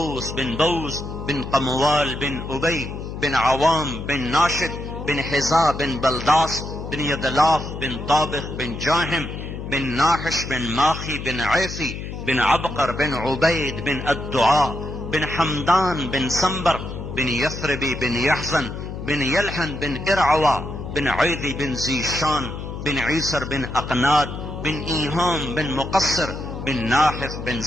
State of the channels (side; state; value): left; noise; hum, 8 dB below the sound